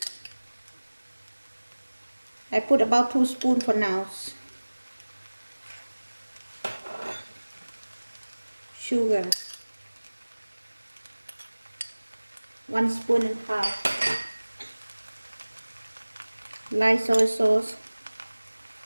I put about 2 spoons for now. Sugar, 1.5 spoons. Light soy sauce,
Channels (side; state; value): both; inverted; correlation -1.00